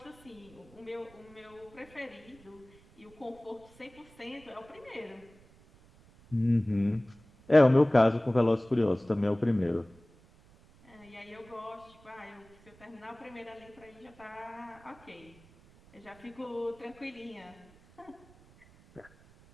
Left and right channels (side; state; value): right; noise; rumble, 26 dB below the sound